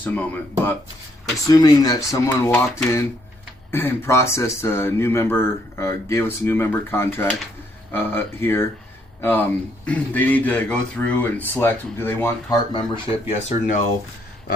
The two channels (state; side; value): normal; both; correlation 0.71